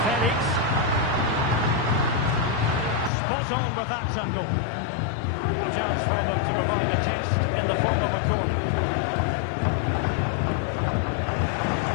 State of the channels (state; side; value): drops out; right; at 3.1 s